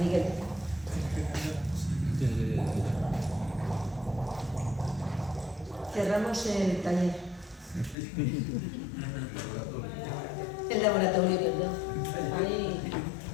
Cerramos el taller. El laboratorio, perdón. Ahí.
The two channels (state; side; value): drops out; right; at 8.0 s